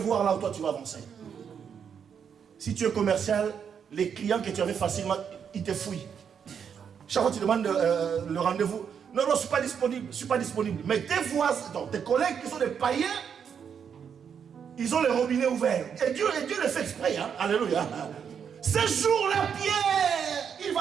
là où toi tu vas avancer. Si tu es commercial, les clients que tu avais facilement, ils te fouillent. Chaque fois que tu demandes le rendez-vous, non, je ne suis pas disponible, je ne suis pas disponible. Mais tes voisins, donc tes collègues qui sont des païens, ils ont les robinets ouverts. Et Dieu le fait exprès, hein? Alléluia. Ce jour-là, Pierre, il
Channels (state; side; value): quieter; left; 7.4 dB